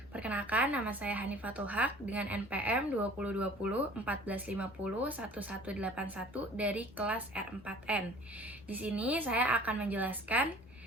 Perkenalkan, nama saya Hanifatul Haq dengan NPM 2020 1450 1181 dari kelas R4N. Di sini saya akan menjelaskan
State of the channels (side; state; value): both; normal; correlation 0.48